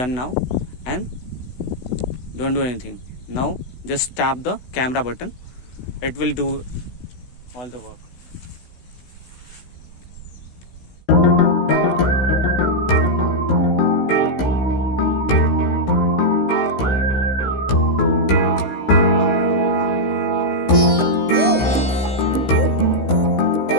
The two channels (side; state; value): right; late; 16 ms